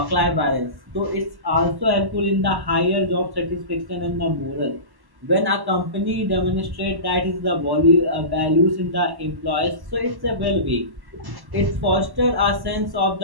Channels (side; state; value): left; late; 1.1 ms